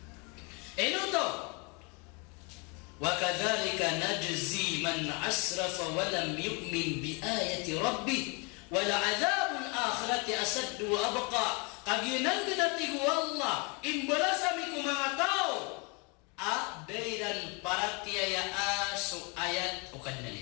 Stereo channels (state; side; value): quieter; right; 31.7 dB